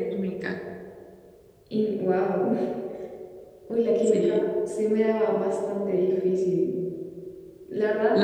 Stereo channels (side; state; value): both; identical; correlation 1.00